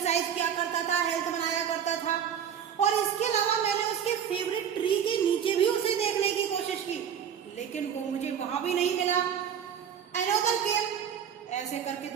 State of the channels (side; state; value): left; quieter; 8.5 dB